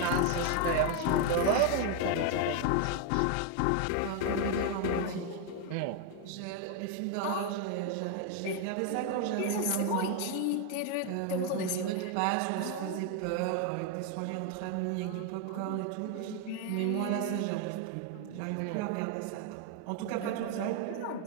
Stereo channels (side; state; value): both; different; correlation 0.01